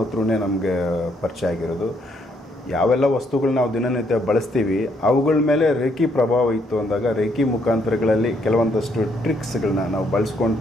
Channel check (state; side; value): normal; both; correlation 0.72